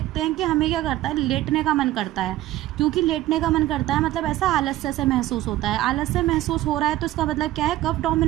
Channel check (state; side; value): quieter; left; 15.3 dB